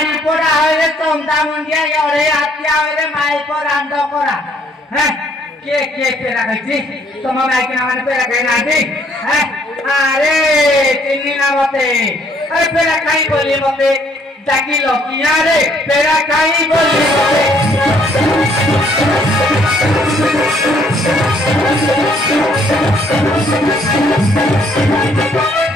पड़ा है चंदा मुंडिया योरे आत्या है माइल पर आंदो करा हैं के पेरा गई तुम मैं के नाम पेरा गई ना दी हैं अरे चिन्नी ना मते अरे पेरा काई बोली मते डाकी लो किया रे पेरा काई बोली मते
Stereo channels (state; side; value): normal; both; correlation 0.65